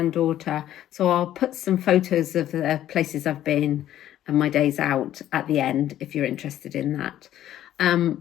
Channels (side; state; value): right; quieter; 12.3 dB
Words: So I'll put some photos of the places I've been and my days out at the end, if you're interested in that.